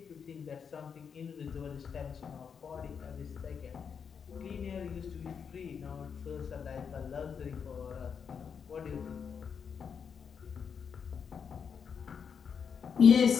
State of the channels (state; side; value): quieter; right; 6.7 dB